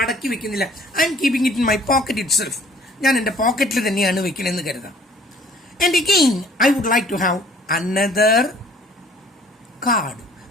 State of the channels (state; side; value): normal; both; correlation 0.55